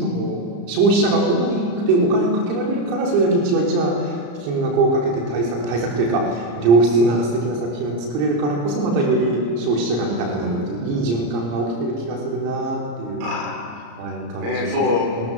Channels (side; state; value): left; late; 34 ms